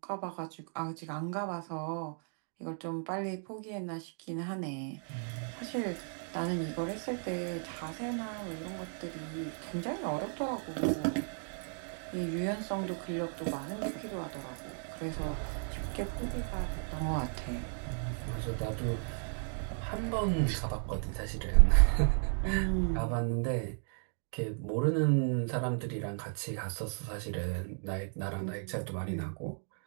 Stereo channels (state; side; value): silent; left; 55 dB below the other